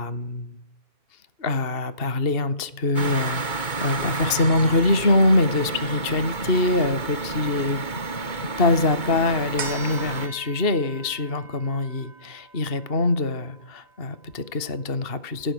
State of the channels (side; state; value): right; late; 2.7 ms